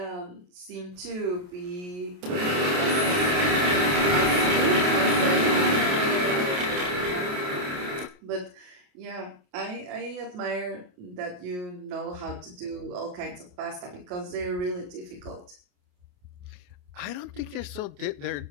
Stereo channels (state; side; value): late; left; 28 ms